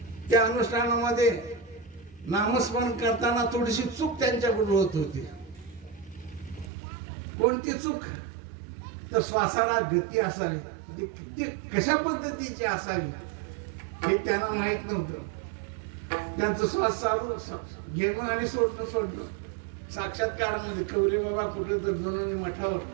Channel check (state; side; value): drops out; left; at 6.7 s